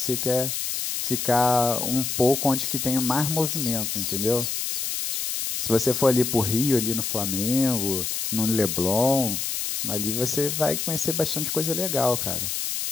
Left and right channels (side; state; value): left; noise; hiss, 2 dB below the sound